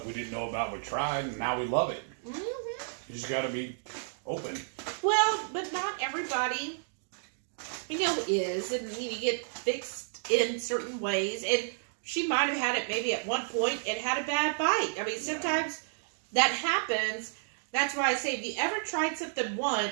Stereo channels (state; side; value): silent; left; digital silence